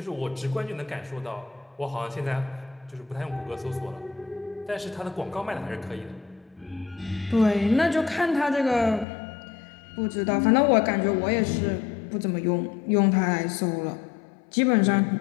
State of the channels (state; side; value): drops out; right; at 9.1 s